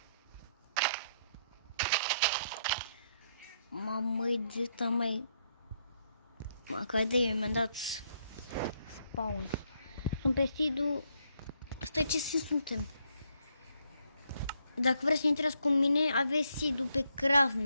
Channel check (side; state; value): both; inverted; correlation -0.75